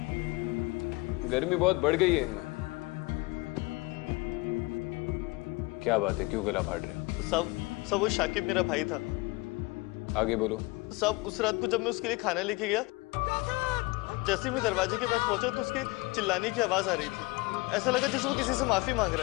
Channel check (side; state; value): right; quieter; 24.1 dB